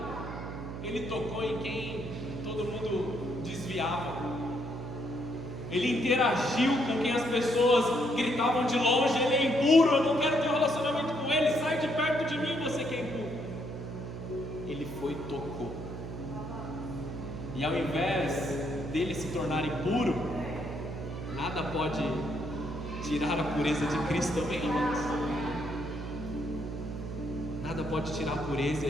Ele tocou em quem todo mundo desviava. Ele interagiu com quem as pessoas gritavam de longe: ele é impuro, eu não quero ter um relacionamento com ele, sai de perto de mim, você que é impuro. Ele foi e tocou. E ao invés dele se tornar impuro, nada pode tirar a pureza de Cristo também, irmãos. Nada pode tirar a pureza e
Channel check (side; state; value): right; noise; hum, 7 dB below the sound